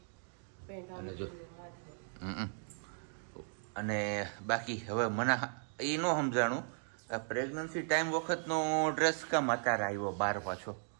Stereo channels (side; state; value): left; silent; 53 dB below the other